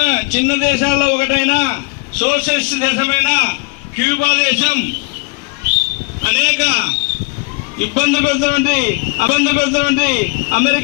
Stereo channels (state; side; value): quieter; right; 28.9 dB